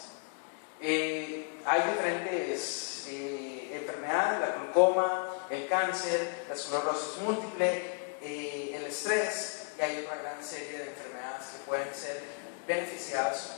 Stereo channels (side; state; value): right; quieter; 40.0 dB